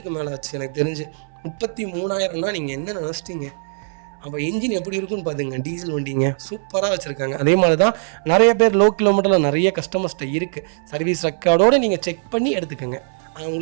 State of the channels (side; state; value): left; silent; 61 dB below the other